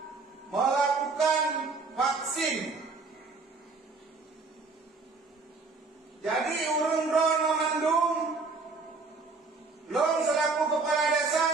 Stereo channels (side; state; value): left; quieter; 4.0 dB